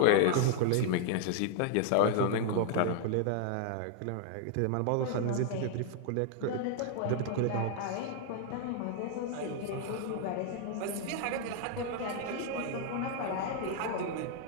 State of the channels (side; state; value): both; different; correlation -0.01